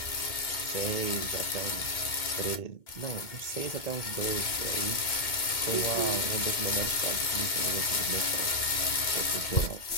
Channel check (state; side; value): late; right; 2.2 ms